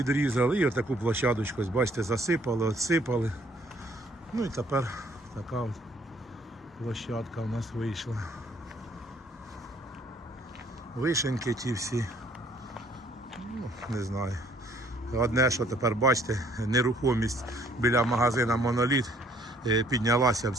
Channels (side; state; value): both; normal; correlation 0.62